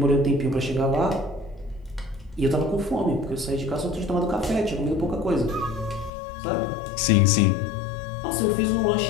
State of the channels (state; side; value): drops out; right; at 6.1 s